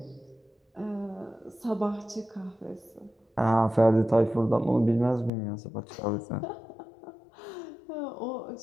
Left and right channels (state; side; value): drops out; right; at 5.3 s